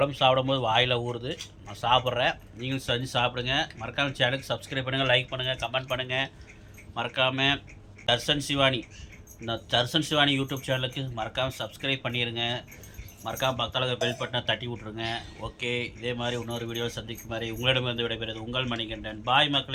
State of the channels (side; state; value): both; identical; correlation 1.00